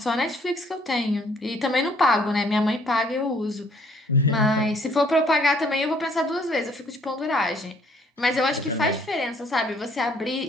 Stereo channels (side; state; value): both; normal; correlation 0.62